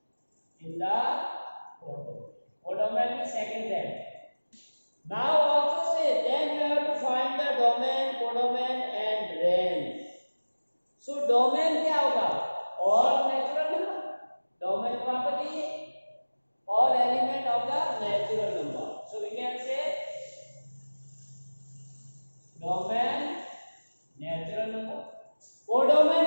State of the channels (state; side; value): inverted; both; correlation -1.00